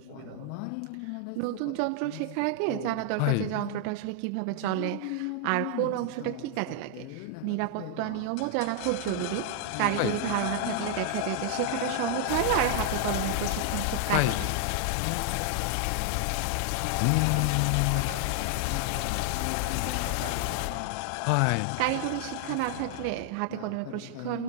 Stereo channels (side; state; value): both; different; correlation 0.00